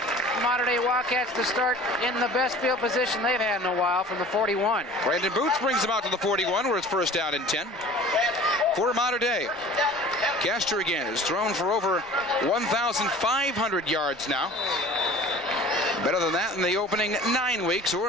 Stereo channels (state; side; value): normal; both; correlation 0.44